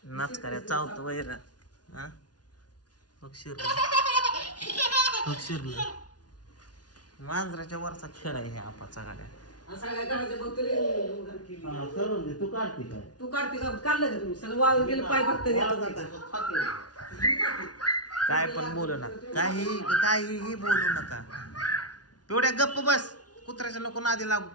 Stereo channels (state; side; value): late; right; 0.69 ms